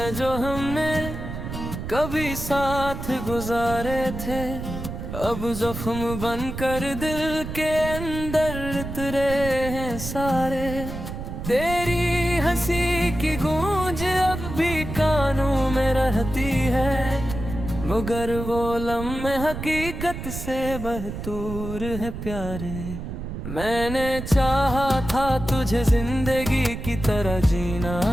जो हमने कभी साथ गुजारे थे, अब जख्म बनकर दिल के अंदर उतरे हैं सारे। तेरी हंसी की गूंज अब भी कानों में रहती है, मगर वो लम्हे हकीकत से बहतूर है प्यारे। मैंने चाहा था तुझे जिंदगी की तरह जीना,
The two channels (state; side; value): noise; right; rumble, 7 dB below the sound